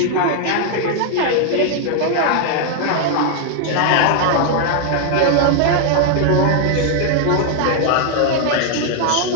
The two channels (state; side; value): different; both; correlation 0.00